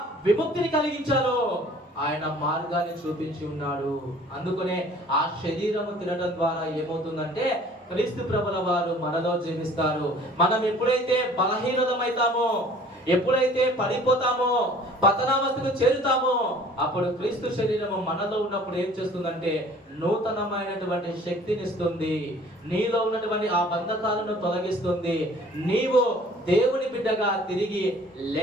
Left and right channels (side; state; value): both; normal; correlation 0.51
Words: విముక్తిని కలిగించాలో ఆయన మార్గాన్ని చూపించి ఉన్నాడు. అందుకనే ఆ శరీరము తినడం ద్వారా ఏమవుతుందంటే క్రీస్తు ప్రభుల వారు మనలో జీవిస్తారు. మనం ఎప్పుడైతే బలహీనమైతామో, ఎప్పుడైతే పడిపోతామో, పతనావస్థకు చేరుతామో, అప్పుడు క్రీస్తు శరీరము మనలో ఉన్నప్పుడు ఏం చేస్తుందంటే నూతనమైనటువంటి శక్తిని ఇస్తుంది. నీలో ఉన్నటువంటి ఆ బంధకాలను తొలగిస్తుంది. నీవు దేవుని బిడ్డగా తిరిగి